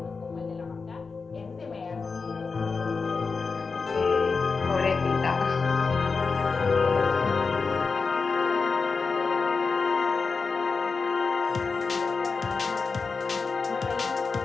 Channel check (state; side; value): quieter; right; 4.7 dB